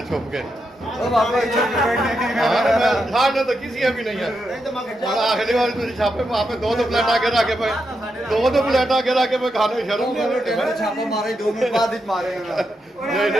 छुप के तो किसी भी नहीं है आखिरी बार तुम छापे वहाँ पे दो प्लेट आगे रखे पे दो प्लेट आगे रखे पे खाने में शर्म छापा मारे 2 मिनट बाद ही मारे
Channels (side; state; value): both; normal; correlation 0.84